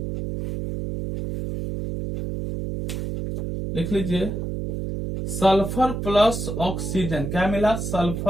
लिख लीजिए सल्फर प्लस ऑक्सीजन। क्या मिला?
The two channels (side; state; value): right; noise; hum, 4 dB below the sound